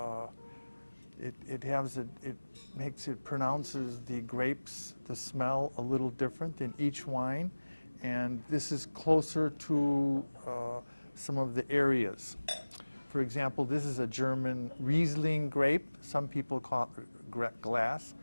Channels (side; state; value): both; inverted; correlation -1.00